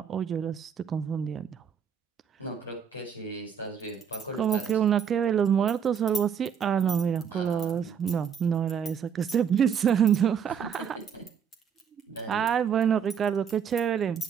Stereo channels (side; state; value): left; quieter; 7.7 dB